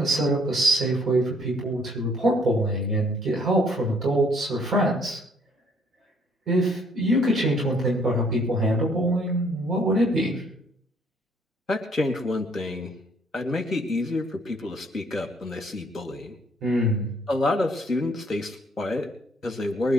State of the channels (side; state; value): both; normal; correlation 0.64